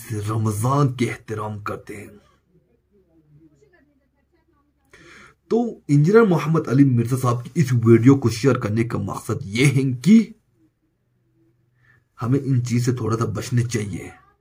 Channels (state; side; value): identical; both; correlation 1.00